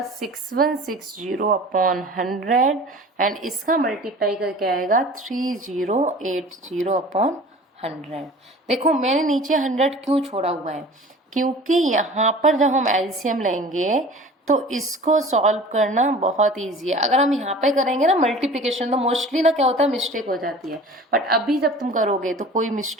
6160/100, एंड इसका मल्टीप्लाई करके आएगा 3080/100। देखो मैंने नीचे 100 क्यों छोड़ा हुआ है, क्योंकि यहाँ पर जब हम एलसीएम लेंगे तो इसको सॉल्व करना बहुत इजी है। अगर हम यहाँ पे करेंगे ना मल्टीप्लिकेशन, तो मोस्टली ना क्या होता है मिस्टेक हो जाती है, बट अभी जब तुम करोगे तो कोई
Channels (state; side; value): normal; both; correlation 0.42